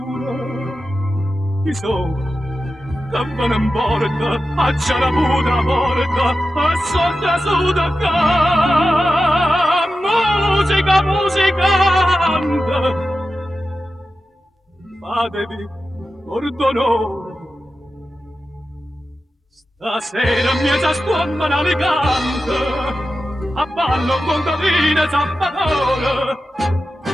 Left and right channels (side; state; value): both; normal; correlation 0.92